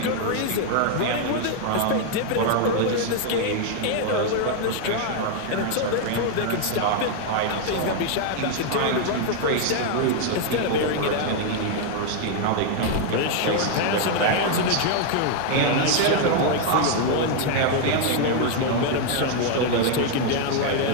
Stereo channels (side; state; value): both; different; correlation 0.00